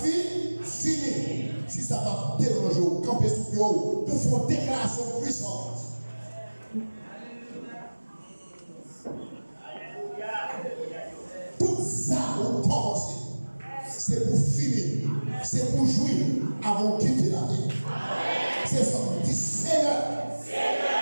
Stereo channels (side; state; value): both; inverted; correlation -1.00